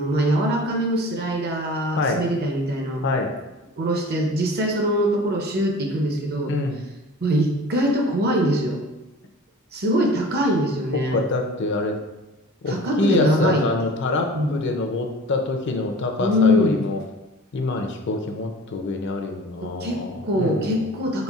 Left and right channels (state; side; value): normal; both; correlation 0.42